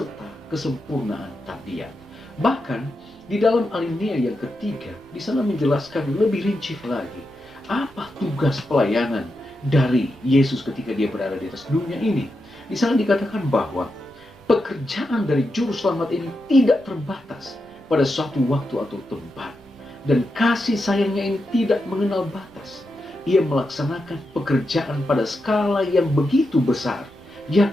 kesempurnaan tabiat. Bahkan di dalam alinea yang ketiga, di sana menjelaskan lebih rinci lagi apa tugas pelayanan dari Yesus ketika dia berada di atas dunia ini. Di sana dikatakan bahwa pekerjaan dari juru selamat ini tidak terbatas pada suatu waktu atau tempat, dan kasih sayangnya ini tidak mengenal batas. Ia melaksanakan pekerjaan pada skala yang begitu besar,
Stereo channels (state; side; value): noise; right; rumble, 28 dB below the sound